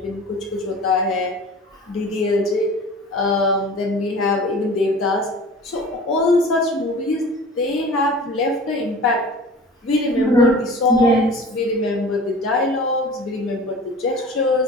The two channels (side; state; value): both; normal; correlation 0.41